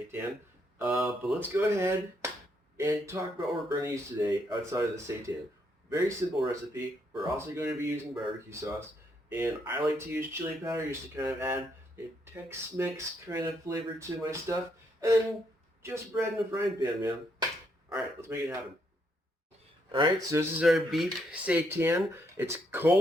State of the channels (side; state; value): both; normal; correlation 0.75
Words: But let's go ahead and talk about what we're going to use today outside of the seitan. Very simple recipe. We're also going to be using barbecue sauce, and I like to use chili powder just to kind of add a Tex-Mex kind of flavor to my stuff, and then just bread in a frying pan, man. Alright, let's make it happen. Alright, so this is our beef seitan. It's